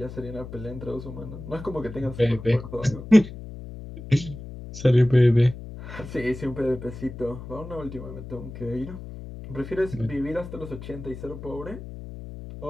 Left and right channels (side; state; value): left; noise; hum, 12 dB below the sound